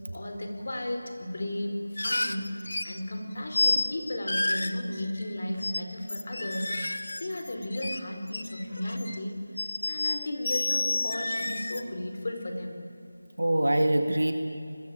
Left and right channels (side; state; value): both; inverted; correlation -0.97